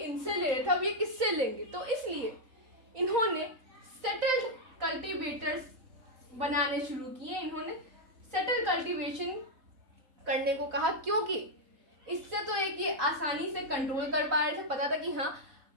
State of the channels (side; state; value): left; late; 3.9 ms